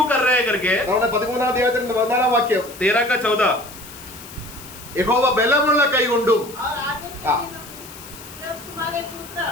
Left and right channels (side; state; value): left; noise; hiss, 16 dB below the sound